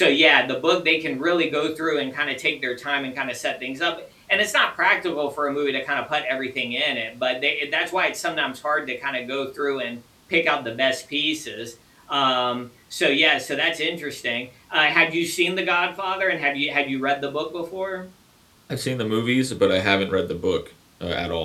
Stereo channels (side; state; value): both; identical; correlation 1.00